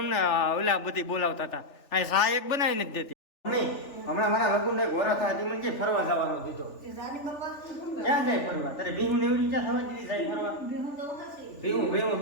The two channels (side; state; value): right; late; 3.4 ms